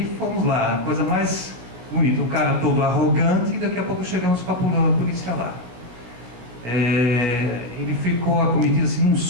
fomos lá, a coisa mais bonita, o cara todo arrogante, e daqui a pouco chegamos com a polícia lá. Ele ficou acometido assim, num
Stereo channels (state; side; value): late; left; 17 ms